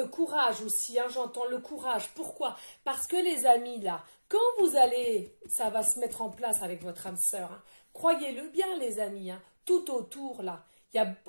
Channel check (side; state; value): both; inverted; correlation -1.00